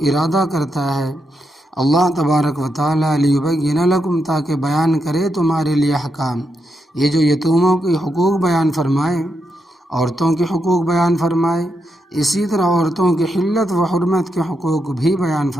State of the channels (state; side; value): normal; both; correlation 0.83